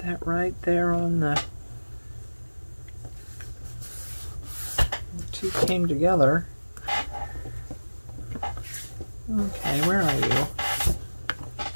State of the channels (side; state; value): both; inverted; correlation -1.00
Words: that right there on the two came together. Okay, where are